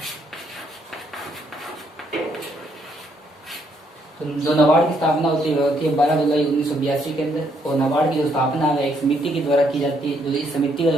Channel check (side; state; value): both; normal; correlation 0.72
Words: तो जो नाबार्ड की स्थापना होती है वह होती है 12 जुलाई 1982 के अंदर। और नाबार्ड की जो स्थापना है एक समिति के द्वारा की जाती है। जो इस समिति का